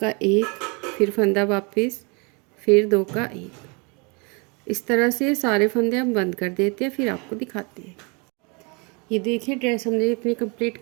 1, फिर फंदा वापस, फिर 2 का 1। इस तरह से सारे फंदे हम बंद कर देते हैं, फिर आपको दिखाते हैं। ये देखिए ड्रेस हमने इतनी कंप्लीट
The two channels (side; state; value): left; quieter; 31.7 dB